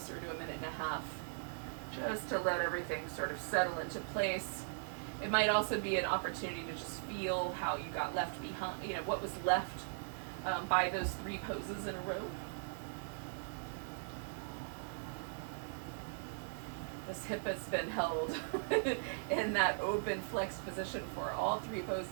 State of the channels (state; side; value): silent; left; 52 dB below the other